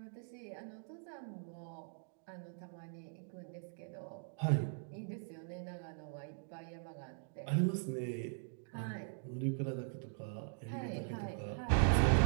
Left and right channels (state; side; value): silent; left; digital silence